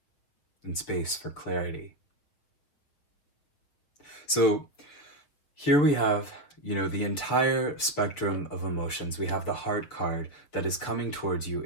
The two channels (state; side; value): late; right; 7.3 ms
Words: and space for clarity. So here we have, the entire spectrum of emotions. We have the heart card that is coming towards you,